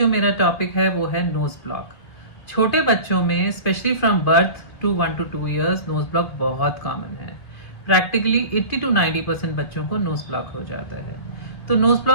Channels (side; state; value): right; late; 2.5 ms